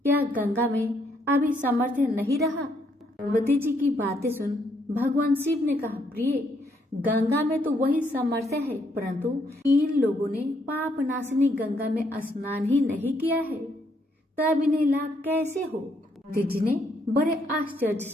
गंगा में अभी सामर्थ्य नहीं रहा? पार्वती जी की बातें सुन भगवान शिव ने कहा, प्रिय, गंगा में तो वही सामर्थ्य है, परंतु इन लोगों ने पाप नाशिनी गंगा में स्नान ही नहीं किया है, तब इन्हें लाभ कैसे हो? पार्वती जी ने बड़े आश्चर्य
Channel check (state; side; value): normal; both; correlation 0.72